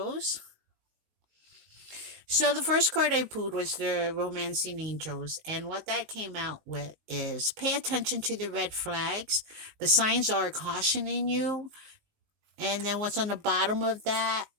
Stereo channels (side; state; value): left; late; 19 ms